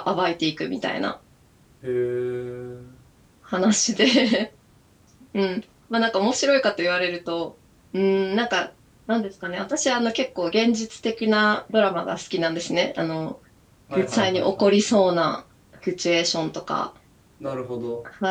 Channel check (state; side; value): identical; both; correlation 1.00